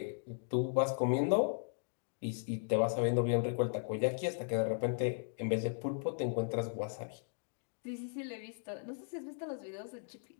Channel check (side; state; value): right; silent; digital silence